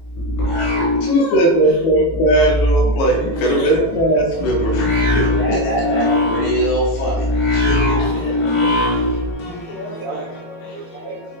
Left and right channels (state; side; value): late; right; 18 ms